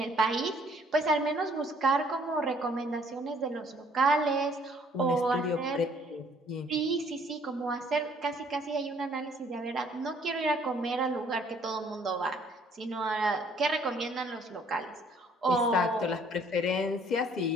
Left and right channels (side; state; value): both; normal; correlation 0.61